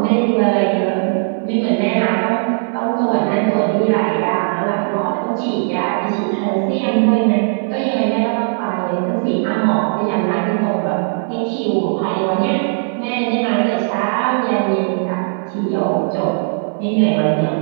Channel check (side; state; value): left; silent; digital silence